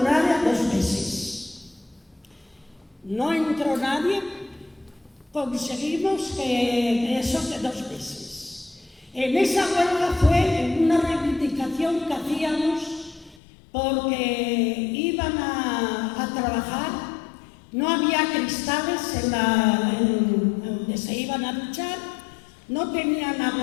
2 meses. No entró nadie, conseguimos que eso de 2 meses. En esa huelga fue una reivindicación que hacíamos porque iban a trabajar, no había cristales donde se iban a duchar, no tenían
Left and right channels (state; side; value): drops out; right; at 13.4 s